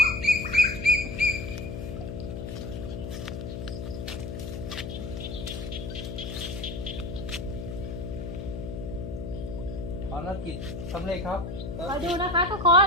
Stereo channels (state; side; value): noise; left; hum, 6 dB below the sound